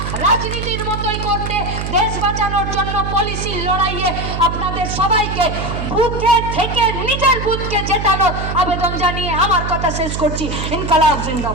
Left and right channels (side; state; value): right; noise; hum, 4 dB below the sound